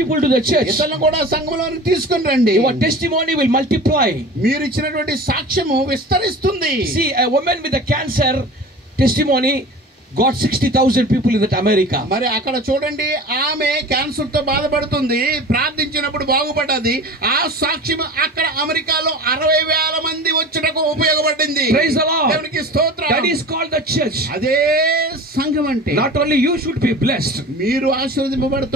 to the church. ఇతరులను కూడా సంఘంలోకి తీసుకుని రండి. Your testimony will multiply. మీరు ఇచ్చినటువంటి సాక్ష్యము విస్తరిస్తుంది. See, a woman with a cancer testimony got 60,000 people in that America. మరి అక్కడ చూడండి, ఆమె క్యాన్సర్ తో బాధపడుతుంది, ప్రార్థించినప్పుడు బాగుపడ్డది. ఆ సాక్ష్యం అక్కడ అమెరికాలో 60,000 మంది వచ్చుటకు ఉపయోగపడింది. Praise the Lord. దేవునికి స్తోత్రం. That is called the church. అదే సంఘం అంటే. Not only you should be blessed, మీరు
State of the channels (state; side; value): normal; both; correlation 0.37